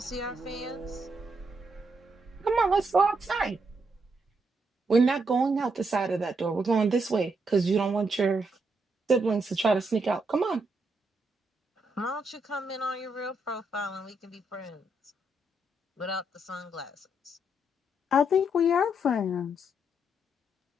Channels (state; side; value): normal; both; correlation 0.78